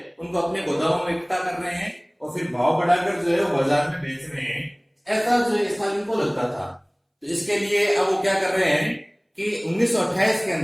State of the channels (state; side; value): identical; both; correlation 1.00